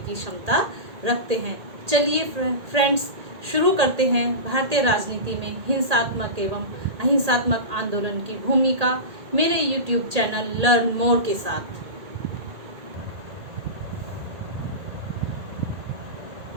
क्षमता रखते हैं। चलिए फ्रेंड्स, शुरू करते हैं भारतीय राजनीति में हिंसात्मक एवं अहिंसात्मक आंदोलन की भूमिका मेरे यूट्यूब चैनल लर्न मोर के साथ।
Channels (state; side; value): late; left; 1.8 ms